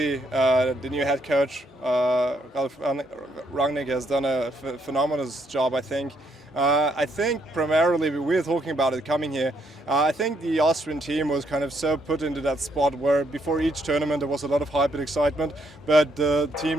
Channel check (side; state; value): both; normal; correlation 0.73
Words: the new head coach, Ralf Rangnick, has done a phenomenal job, I think. I think primarily, we were talking about it coming here, I think the Austrian team was kind of so put into that spot where before each tournament there was a lot of hype and excitement, but the